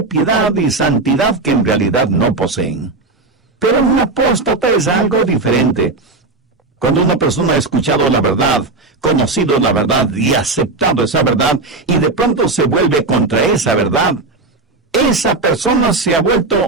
piedad y santidad que en realidad no poseen. Pero un apóstata es algo diferente. Cuando una persona ha escuchado la verdad, conocido la verdad y aceptado esa verdad, y de pronto se vuelve contra esa verdad, esa persona se ha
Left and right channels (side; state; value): left; quieter; 3.5 dB